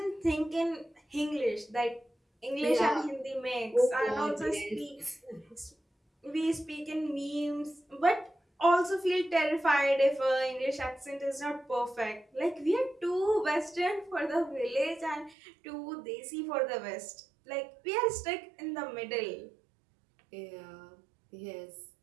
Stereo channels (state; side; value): drops out; left; at 15.4 s